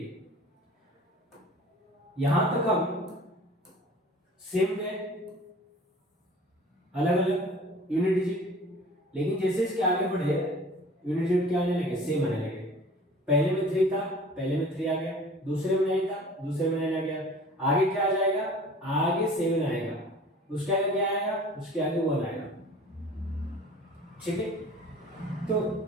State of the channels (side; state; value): both; normal; correlation 0.45